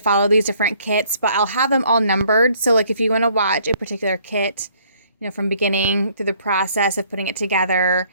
these different kits, but I'll have them all numbered. So like if you want to watch a particular kit, from beginning through the process of putting it together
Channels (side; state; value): both; inverted; correlation -0.62